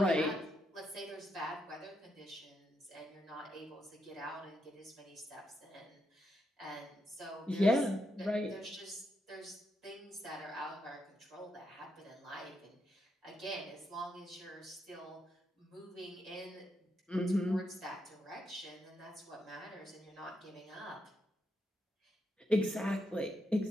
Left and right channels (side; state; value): both; normal; correlation 0.81